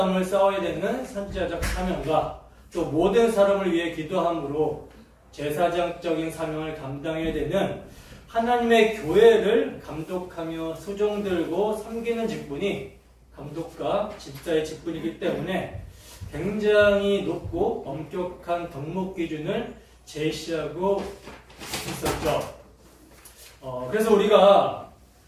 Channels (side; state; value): both; identical; correlation 1.00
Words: 싸워야 되는 선지자적 사명과 또 모든 사람을 위해 기도함으로 제사장적인 사명을 감당해야 되는 하나님의 교회를 감독하며 수종들고 섬기는 직분이 감독과 집사의 직분이기 때문에 굉장히 높고 엄격한 덕목 기준을 제시하고 있었죠. 그래서 우리가